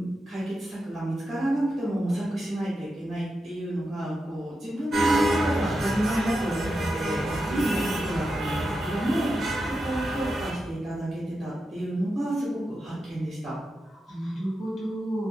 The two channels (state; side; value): normal; both; correlation 0.89